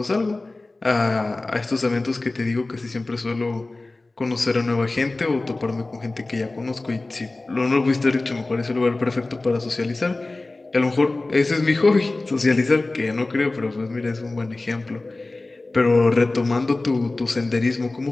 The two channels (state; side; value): quieter; right; 3.1 dB